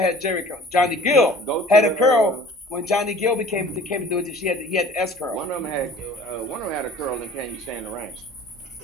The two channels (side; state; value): both; normal; correlation 0.47